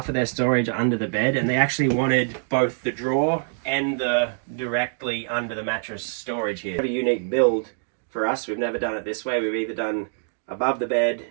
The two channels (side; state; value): left; silent; digital silence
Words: of their storage under the bed, and they actually wanted both the drawer and the directly under the mattress storage here. A unique build for us. We've never done it this way. We've either done above the bed,